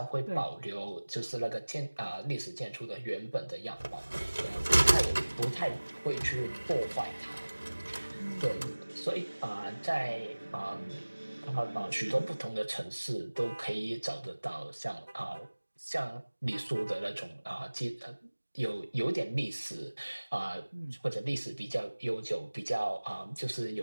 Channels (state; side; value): inverted; both; correlation -1.00